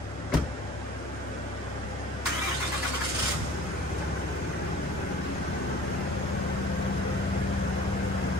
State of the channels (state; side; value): normal; both; correlation 0.45